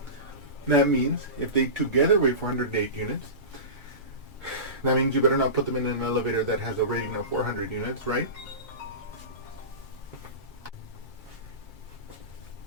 That means if they together weigh 408 units, that means you better not put them in an elevator that has a rating of 400 units, right?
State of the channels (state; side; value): late; right; 2.3 ms